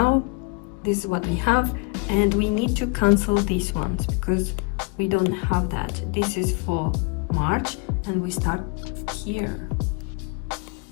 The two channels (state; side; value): quieter; right; 30.5 dB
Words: this is what we have, and we need to cancel these ones because we don't have that. This is for March and we start here.